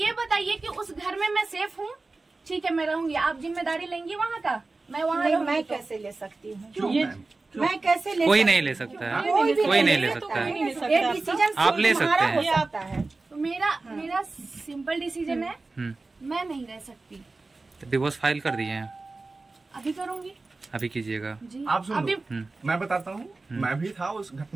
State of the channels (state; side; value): quieter; left; 3.5 dB